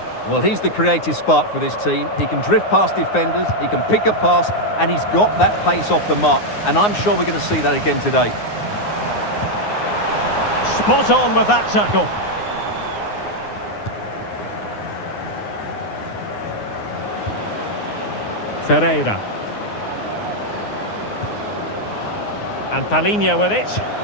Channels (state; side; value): late; right; 9.6 ms